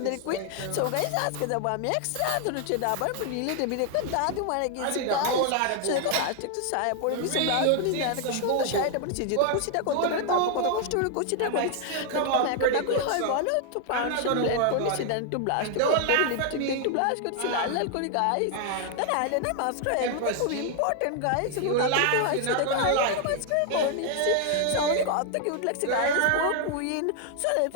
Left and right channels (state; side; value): different; both; correlation 0.00